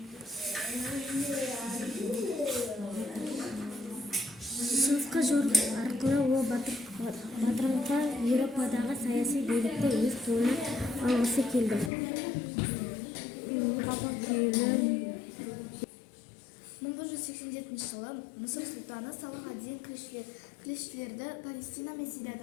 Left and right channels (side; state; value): right; drops out; at 11.9 s